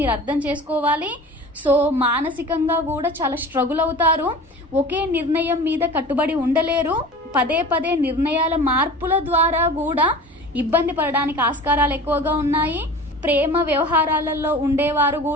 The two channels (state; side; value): normal; both; correlation 0.38